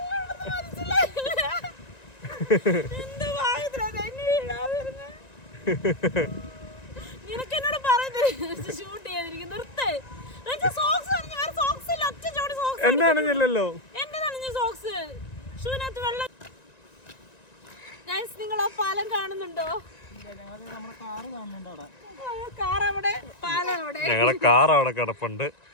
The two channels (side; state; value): right; late; 1.9 ms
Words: എന്നാണില്ലല്ലോ. നിങ്ങൾ ആ പാലം കാണുന്നുണ്ടോ? ഞങ്ങളുടെ കാർ അവിടെ കിടപ്പുണ്ട്,